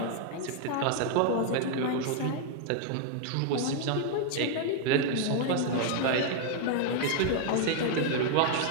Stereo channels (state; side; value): different; both; correlation 0.00